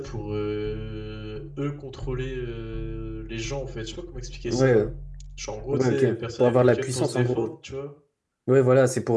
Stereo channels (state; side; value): identical; both; correlation 1.00